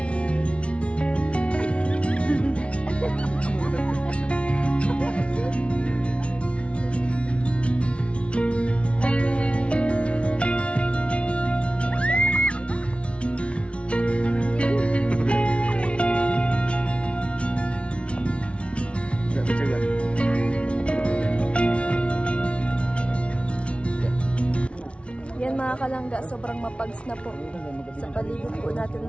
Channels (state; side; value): late; right; 0.060 ms